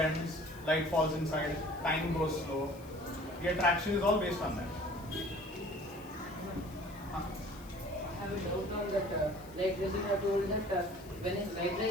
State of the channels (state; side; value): noise; left; hiss, 23 dB below the sound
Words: light falls inside, time goes slow. The attraction is all based on that. I have a doubt on that. Like this, you have told that when a light